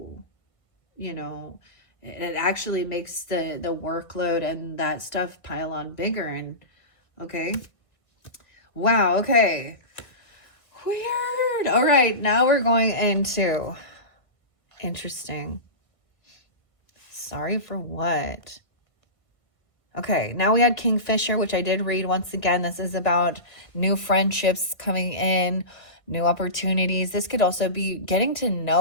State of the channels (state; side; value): late; right; 1.5 ms